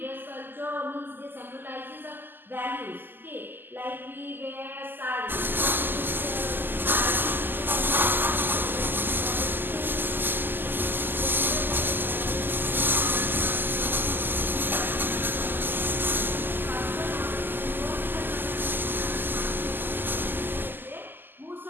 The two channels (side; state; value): left; late; 0.093 ms